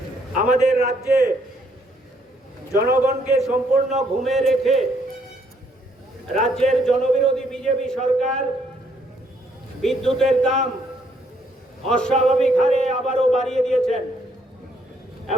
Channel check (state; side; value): normal; both; correlation 0.69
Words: আমাদের রাজ্যে জনগণকে সম্পূর্ণ ঘুমে রেখে রাজ্যের জনবিরোধী বিজেপি সরকার বিদ্যুতের দাম অস্বাভাবিক হারে আবারও বাড়িয়ে দিয়েছেন।